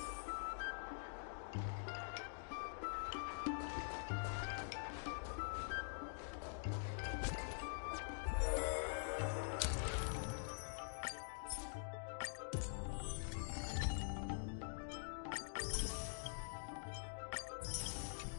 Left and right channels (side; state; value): right; silent; digital silence